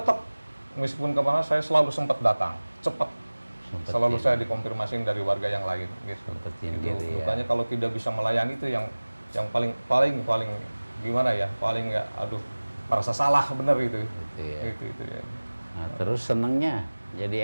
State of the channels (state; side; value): inverted; both; correlation -1.00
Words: meskipun kemana saya selalu sempat datang, cepat. Selalu saya dikonfirmasiin dari warga yang lain gitu. Sempetin Itu diri ya. dukanya kalau tidak bisa melayani itu yang paling gimana ya? Paling nggak, merasa salah bener itu. Gitu ya. Itu ya. Nah, terus senengnya